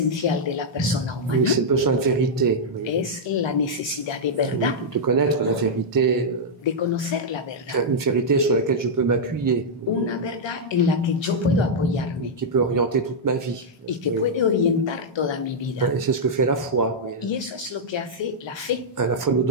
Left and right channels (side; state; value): both; normal; correlation -0.06